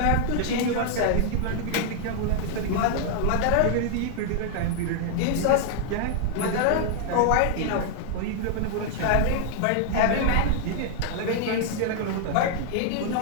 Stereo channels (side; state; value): both; different; correlation -0.01